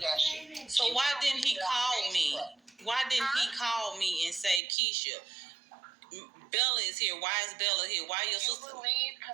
shit. So why didn't he call me? Why didn't he call me and say, Keisha, Bella is here. Why is Bella here? Why your sister? You believe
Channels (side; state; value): left; drops out; at 4.6 s